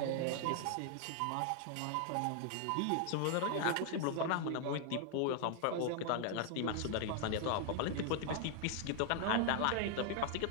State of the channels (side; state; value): both; different; correlation 0.00